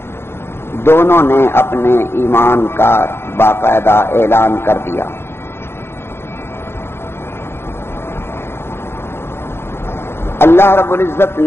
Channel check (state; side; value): late; right; 0.11 ms